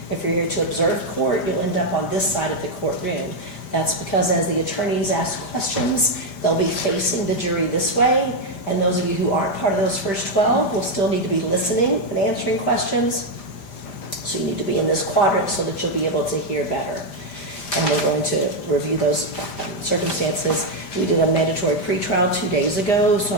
If you're here to observe court, you'll end up on this side of the courtroom. That's because as the attorneys ask questions, they'll be facing the jury this way. And those of you who aren't part of those first 12 will still need to be listening and answering questions. So you need to be in this quadrant so that you'll be able to hear better. And we're going to review those circumstances. We did a mandatory pretrial 2 days ago, so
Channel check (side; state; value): right; late; 5.0 ms